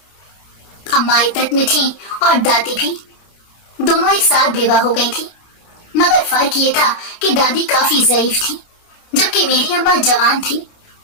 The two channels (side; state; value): right; late; 29 ms